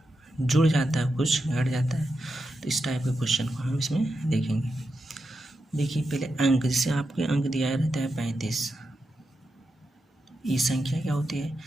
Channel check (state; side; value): normal; both; correlation 0.87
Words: जुड़ जाता है, कुछ घट जाता है। तो इस टाइप के क्वेश्चन को हम इसमें देखेंगे। देखिए पहले अंक, जैसे आपके अंक दिया रहता है 35। ये संख्या क्या होती